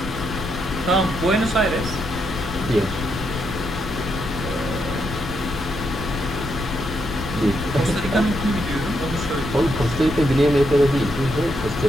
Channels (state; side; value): noise; left; rumble, 8 dB below the sound